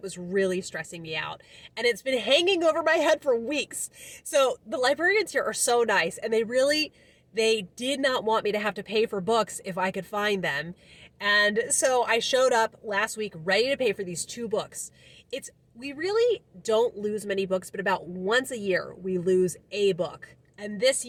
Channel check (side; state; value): both; identical; correlation 1.00